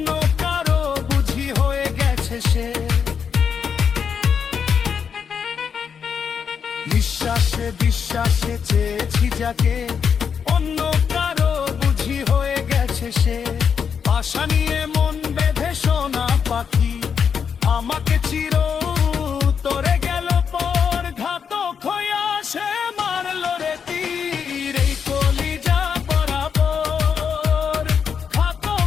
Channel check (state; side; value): quieter; right; 6.9 dB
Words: কারো বুঝি হয়ে গেছে সে। নিঃশ্বাসে বিশ্বাসে চেয়েছি যাকে, অন্য কারো বুঝি হয়ে গেছে সে। আশা নিয়ে মন বেঁধে সোনা পাখি আমাকে চির তোরে গেল পর, ঘাতক হইয়া সে মারল রে তীর এই কলিজা বরাবর,